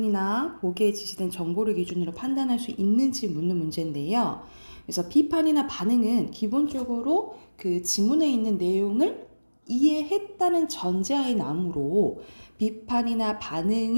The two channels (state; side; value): inverted; both; correlation -1.00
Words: 보기에 지시된 정보를 기준으로 판단할 수 있는지 묻는 문제인데요. 그래서 비판이나 반응은 기본적으로 그 지문에 있는 내용을 이해했다는 전제하에 나오므로 비판이나